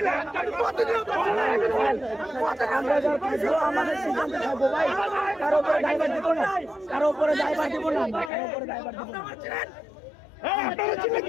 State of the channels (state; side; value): drops out; right; at 8.3 s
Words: আমরা যারা পাইছো আমাদের সিদ্ধান্ত থাকবো ভাই, কারো উপরে দায়ভার দিব না, কারো উপরে দায়ভার দিব না, কারো উপরে দায়ভার দিব না। আপনারা ছিলেন